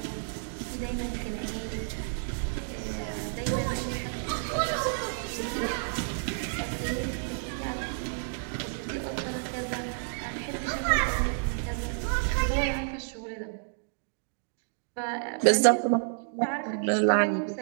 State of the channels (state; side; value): silent; left; digital silence